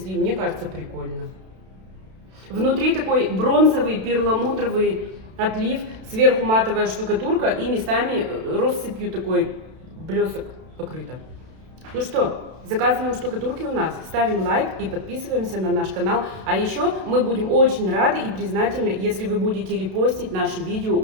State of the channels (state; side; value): late; left; 32 ms